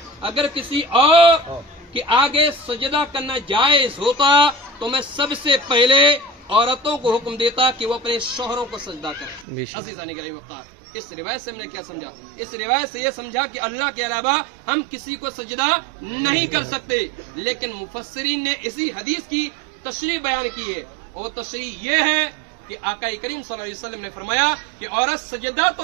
اگر کسی اور کے آگے سجدہ کرنا جائز ہوتا تو میں سب سے پہلے عورتوں کو حکم دیتا کہ وہ اپنے شوہروں کو سجدہ کریں۔ عزیزان گرامی مختار، اس روایت سے ہم نے کیا سمجھا؟ اس روایت سے یہ سمجھا کہ اللہ کے علاوہ ہم کسی کو سجدہ نہیں کر سکتے، لیکن مفسرین نے اسی حدیث کی تشریح بیان کی ہے، اور تشریح یہ ہے کہ آقا کریم صلی اللہ علیہ وسلم نے فرمایا کہ عورت سجدہ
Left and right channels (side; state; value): left; drops out; at 9.5 s